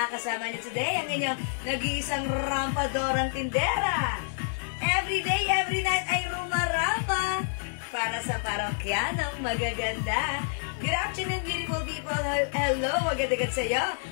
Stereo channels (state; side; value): silent; right; digital silence